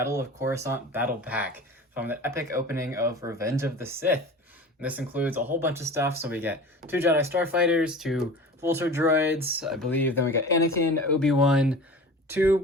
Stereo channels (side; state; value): both; normal; correlation 0.37